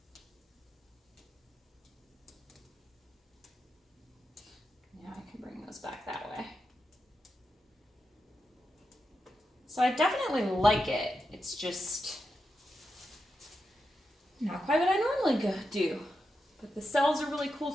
Now I can bring those back that way. So I definitely like it. It's just Not quite what I normally do. But the cells are really cool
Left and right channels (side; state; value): both; normal; correlation 0.88